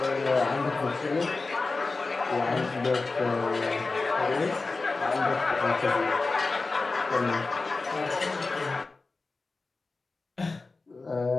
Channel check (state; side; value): quieter; right; 3.7 dB